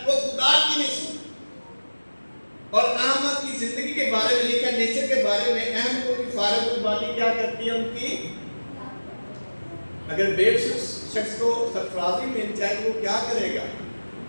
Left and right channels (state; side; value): inverted; both; correlation -1.00